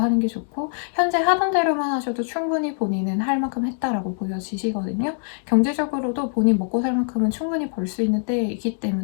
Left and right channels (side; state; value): right; silent; digital silence